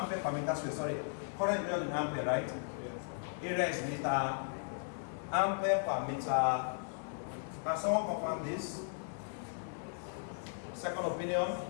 per meter square. Sorry. Current is in ampere, right? Yes. Area is meter. Ampere per meter. Can someone confirm this? Second opinion?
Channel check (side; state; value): right; silent; digital silence